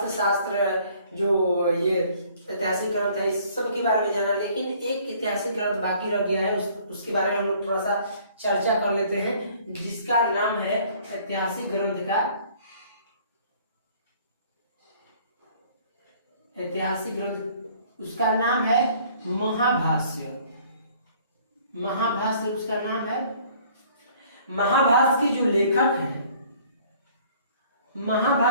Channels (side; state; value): both; inverted; correlation -0.57